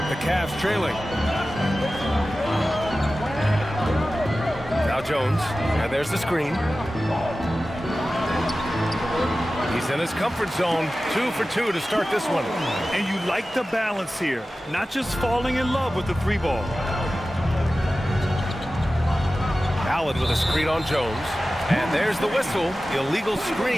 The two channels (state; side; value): normal; both; correlation 0.95